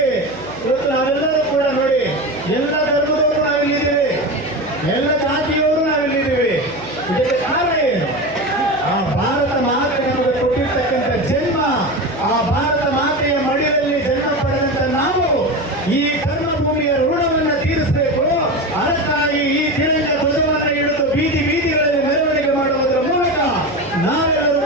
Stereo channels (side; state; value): right; noise; hum, 18 dB below the sound